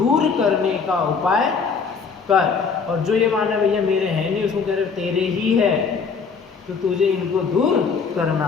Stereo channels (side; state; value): right; quieter; 5.4 dB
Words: करने का उपाय कर। और जो ये माने भैया मेरे हैं नहीं, उसको कह रहे तेरे ही है, तो तुझे इनको दूर करना